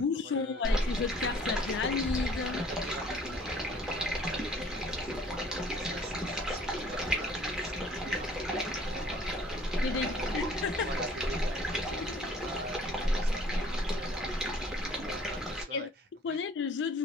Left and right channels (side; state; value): both; normal; correlation 0.54